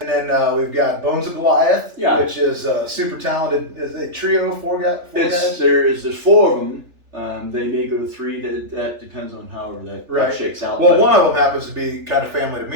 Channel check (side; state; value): left; late; 3.4 ms